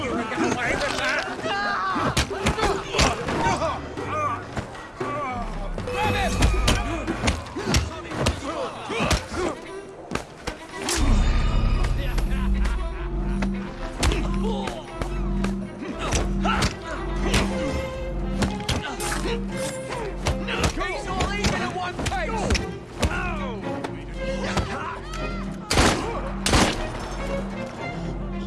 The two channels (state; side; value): identical; both; correlation 1.00